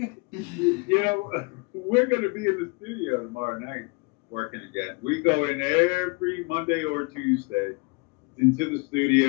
You know, we're going to be in the studio tomorrow night working again. We go in every Monday or Tuesday into the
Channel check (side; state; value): right; quieter; 30.1 dB